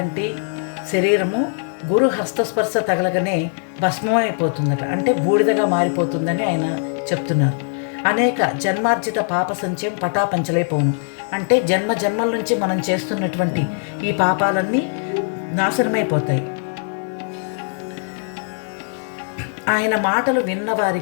శరీరము గురు హస్తస్పర్శ తగలగానే భస్మమైపోతుందట, అంటే బూడిదగా మారిపోతుందని ఆయన చెప్తున్నారు. అనేక జన్మార్జిత పాప సంచయం పటాపంచలైపోను, అంటే జన్మ జన్మల నుంచి మనం చేస్తున్నటువంటి ఈ పాపాలన్నీ నాశనమైపోతాయి. ఆయన మాటలు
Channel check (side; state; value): right; silent; 58 dB below the other